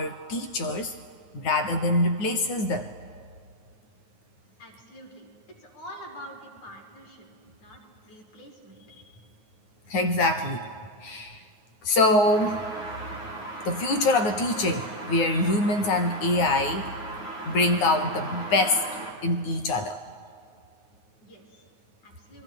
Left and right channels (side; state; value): right; late; 9.4 ms